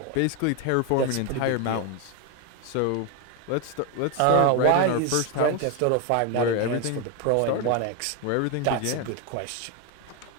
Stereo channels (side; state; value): both; different; correlation 0.01